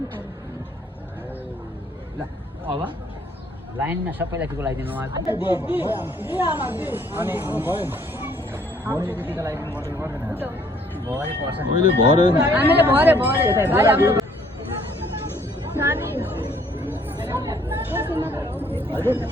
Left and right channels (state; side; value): normal; both; correlation 0.62